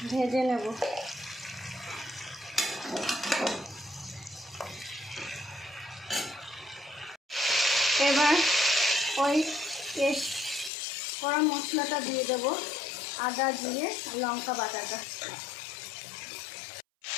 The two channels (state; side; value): drops out; right; at 10.7 s